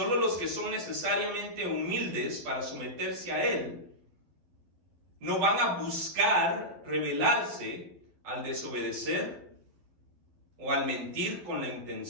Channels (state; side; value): late; left; 12 ms